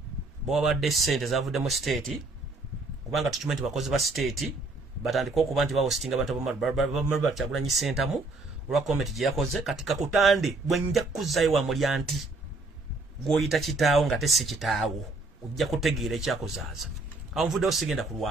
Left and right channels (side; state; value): left; quieter; 3.3 dB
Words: bo badde sente zavudde mu state kubanga tukimanyi bakozi ba state batandika okuba nti bahostinga abantu bamalwa Kyagulanyi Center mu olwa comment gye yakoze katika kutande bwe nja kuzaayo wa mulyanti gwoyita kitaawo nga tesi kitaawo ojja kutegeera ekyakozaaza anvudde osigenda